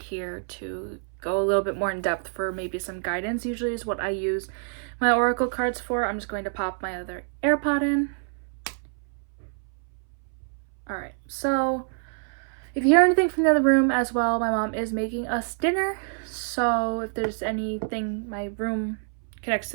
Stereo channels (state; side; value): silent; left; 60 dB below the other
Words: to go a little bit more in depth for maybe some guidance. Usually is what I use my oracle cards for. I'm just going to pop my other AirPod in. Alright, so if you hear anything from the other room as well, my mom is making us dinner. So if there's anything, my room connects to